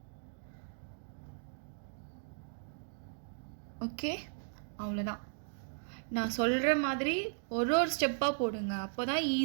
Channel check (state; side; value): silent; left; digital silence